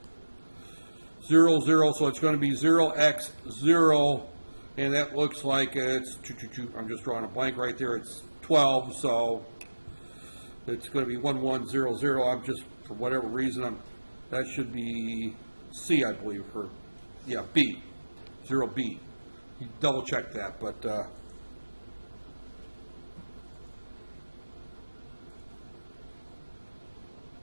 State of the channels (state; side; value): inverted; both; correlation -1.00